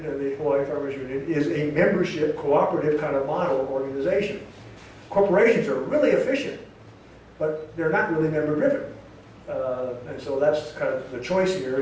and the Hawaii Farmers Union is a membership, cooperative kind of model organization. Corporations are really efficient, but they're not really member-driven. And so that's kind of the choice here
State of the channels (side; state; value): both; identical; correlation 1.00